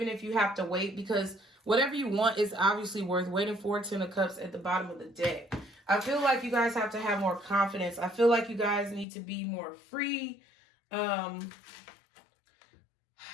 if you have to wait, because whatever you want is obviously worth waiting for. 10 of Cups at the bottom of the deck. I feel like you guys have to have more confidence. I feel like you guys need to be more free. I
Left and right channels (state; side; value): drops out; right; at 9.1 s